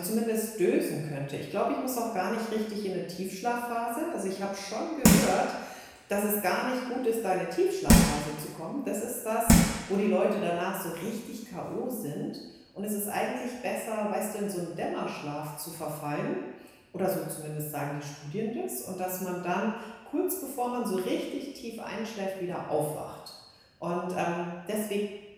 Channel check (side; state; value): both; identical; correlation 1.00